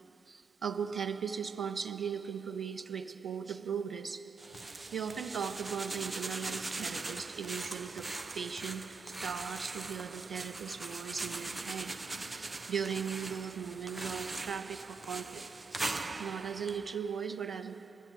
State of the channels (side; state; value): left; quieter; 5.1 dB